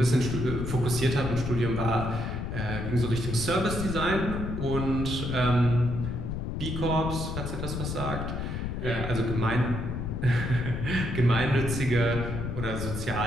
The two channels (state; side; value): noise; left; rumble, 4 dB below the sound